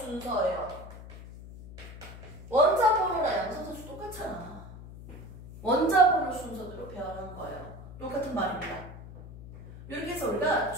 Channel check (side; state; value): left; noise; hum, 14 dB below the sound